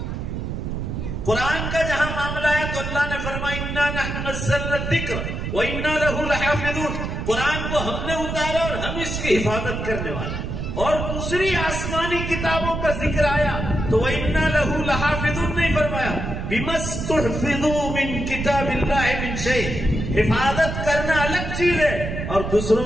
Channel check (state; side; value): noise; right; rumble, 4 dB below the sound